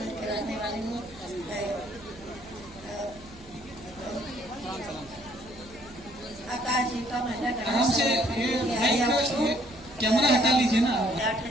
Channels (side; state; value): right; noise; hum, 21 dB below the sound